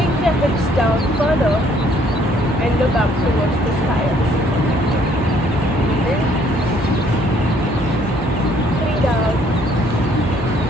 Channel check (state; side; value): normal; both; correlation 0.63